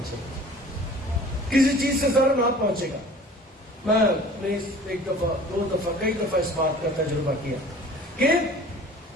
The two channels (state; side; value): normal; both; correlation 0.46